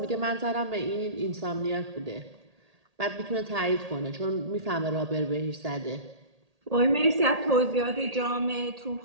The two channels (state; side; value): late; left; 1.8 ms